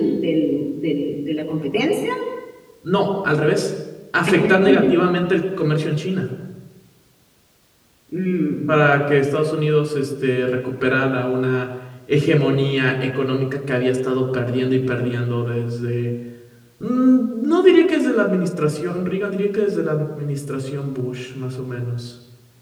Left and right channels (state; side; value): identical; both; correlation 1.00